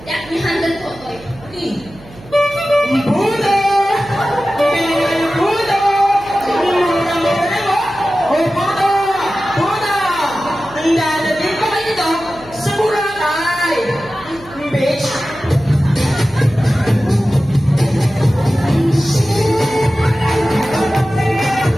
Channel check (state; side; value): noise; right; hum, 21 dB below the sound